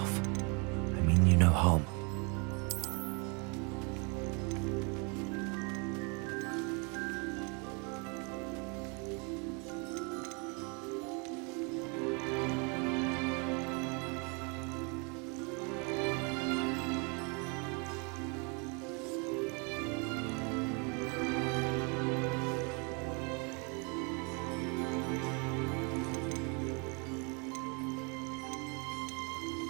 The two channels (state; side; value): quieter; left; 33.4 dB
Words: I mean you no harm.